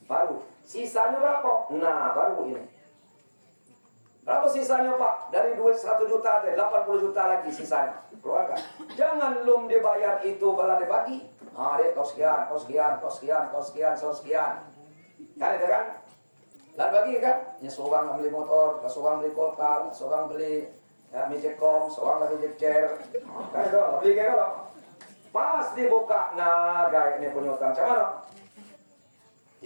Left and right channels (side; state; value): both; inverted; correlation -1.00